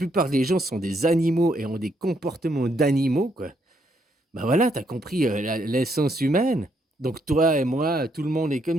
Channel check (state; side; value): normal; both; correlation 0.74